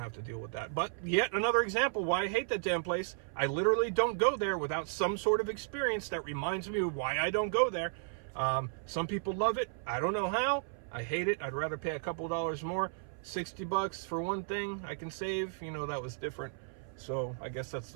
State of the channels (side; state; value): left; silent; 55 dB below the other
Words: to deal with that. But yet another example why I hate that damn place. I literally don't go there without some sort of experience that reminds me of why I don't go there. Some people love it. I don't know how. I hate it. I'd rather pay a couple dollars more. $60 for one thing I can save. That was different. So I guess that's